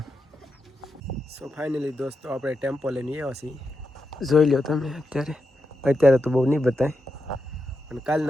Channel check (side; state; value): both; normal; correlation 0.87